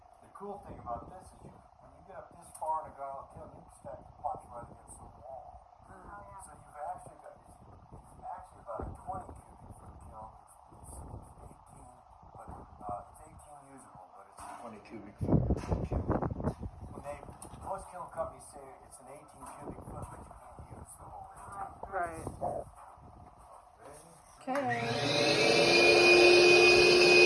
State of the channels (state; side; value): identical; both; correlation 1.00